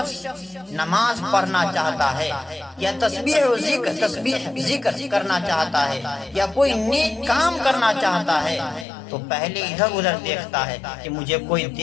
نماز پڑھنا چاہتا ہے یا تسبیح ذکر کرنا چاہتا ہے یا کوئی نیک کام کرنا چاہتا ہے تو پہلے ادھر ادھر دیکھتا ہے کہ مجھے کوئی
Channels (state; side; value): drops out; right; at 8.8 s